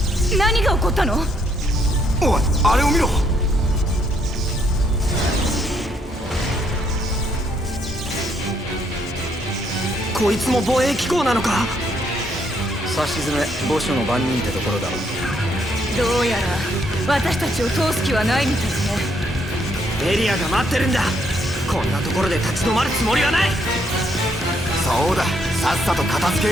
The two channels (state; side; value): normal; both; correlation 0.72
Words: 何が起こったの？おい、あれを見ろ。こいつも防衛機構なのか？さしずめ墓所の番人ってところだろう。どうやら私たちを通す気はないみたいね。エリアが待ってるんだ。こんなところで立ち止まるつもりはない。そうだ、さっさと片付け